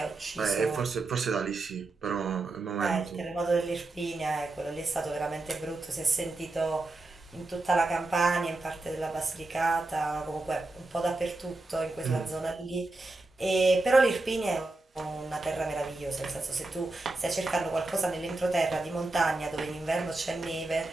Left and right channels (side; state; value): left; quieter; 3.1 dB